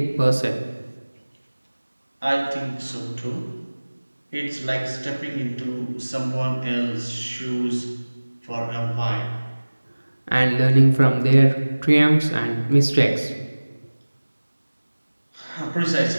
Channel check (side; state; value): both; inverted; correlation -1.00